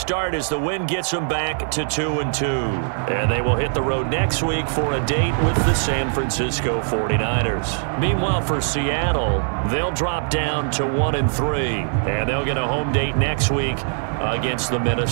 as the win gets them back to 2-2. And they will hit the road next week for a date with the San Francisco 49ers. Meanwhile, for Seattle, they'll drop down to 1-3. And they'll get a home date next week against the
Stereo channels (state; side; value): silent; left; digital silence